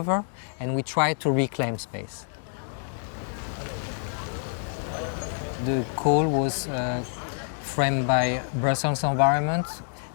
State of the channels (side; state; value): right; silent; 60 dB below the other